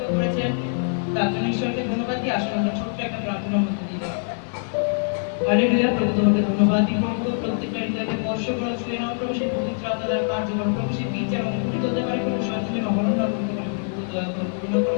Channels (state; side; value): silent; right; 63 dB below the other